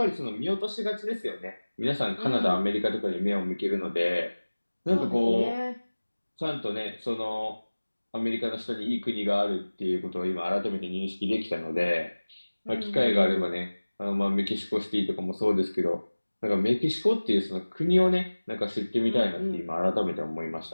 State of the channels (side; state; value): both; inverted; correlation -1.00